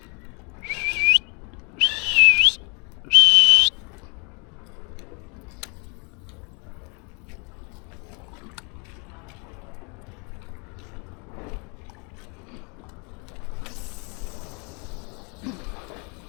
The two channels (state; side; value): quieter; right; 33.6 dB